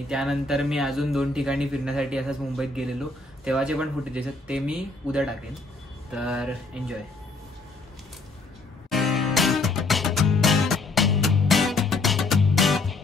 त्यानंतर मी अजून 2 ठिकाणी फिरण्यासाठी असंच मुंबईत गेलेलो, तेव्हाचे पण फुटेज आहेत, ते मी उद्या टाकेन. तर एन्जॉय.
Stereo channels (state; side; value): quieter; right; 3.4 dB